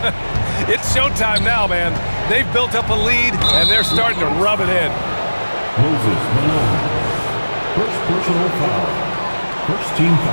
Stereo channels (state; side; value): inverted; both; correlation -1.00